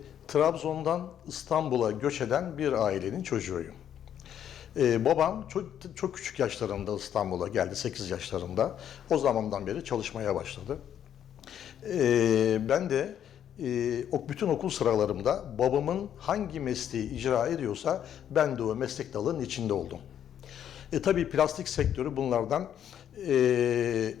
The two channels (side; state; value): right; quieter; 9.7 dB